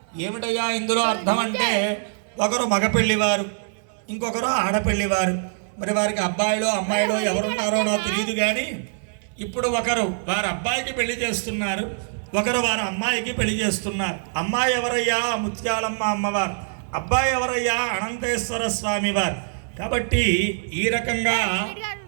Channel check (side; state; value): left; silent; 63 dB below the other